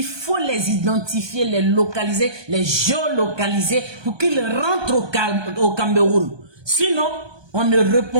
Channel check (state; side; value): late; left; 1.2 ms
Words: faut les identifier, les localiser, les géolocaliser pour qu'ils rentrent au Cameroun. Sinon, on ne